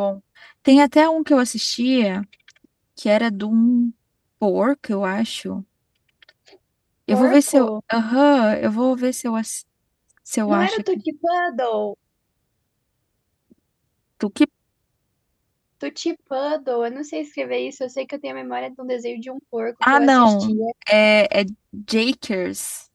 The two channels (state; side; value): identical; both; correlation 1.00